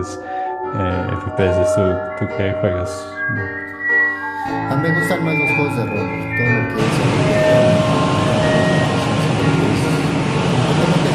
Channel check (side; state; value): both; identical; correlation 1.00